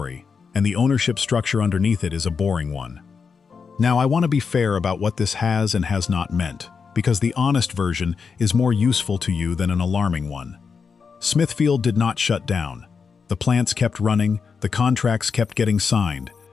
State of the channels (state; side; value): quieter; right; 5.6 dB